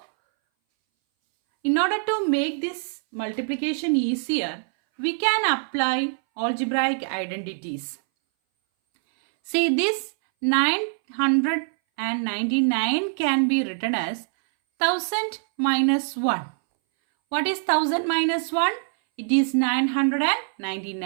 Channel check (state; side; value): silent; left; 60 dB below the other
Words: in order to make this multiplication easier, we can apply algebraic identities. See, this 999 can be written as 1000 minus 1. What is 1000 minus 1? It is